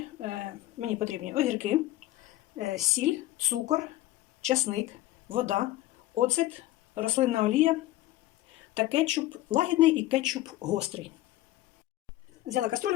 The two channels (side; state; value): right; quieter; 16.0 dB